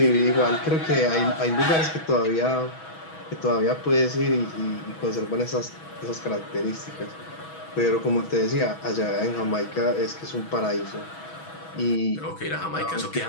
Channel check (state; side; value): late; right; 6.2 ms